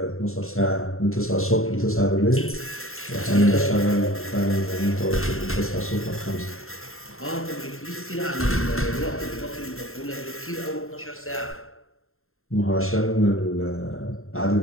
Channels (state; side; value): late; right; 0.61 ms